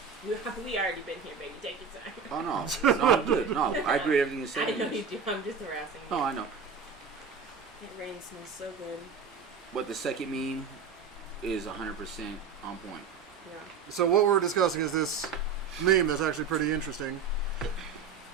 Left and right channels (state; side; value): quieter; left; 5.7 dB